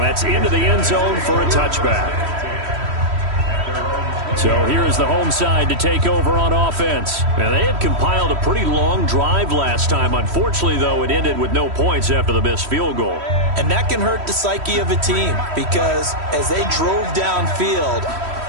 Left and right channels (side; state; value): left; late; 3.1 ms